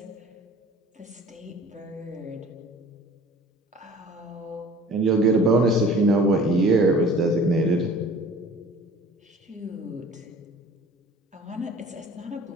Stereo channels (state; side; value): normal; both; correlation 0.47